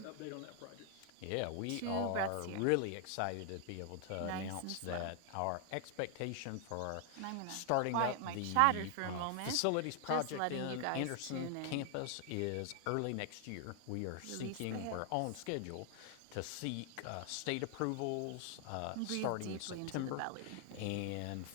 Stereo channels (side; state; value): both; different; correlation 0.00